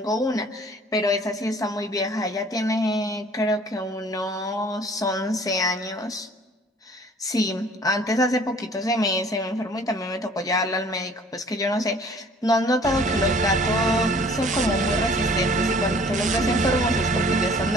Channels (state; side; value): normal; both; correlation 0.52